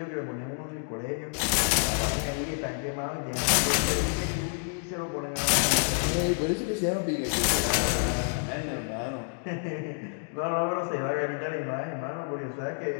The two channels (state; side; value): silent; right; 59 dB below the other